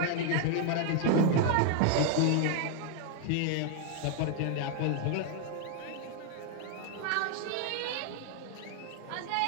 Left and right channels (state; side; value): different; both; correlation 0.00